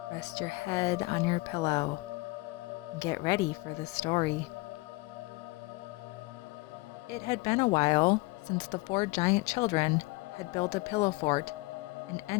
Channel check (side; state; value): right; quieter; 23.4 dB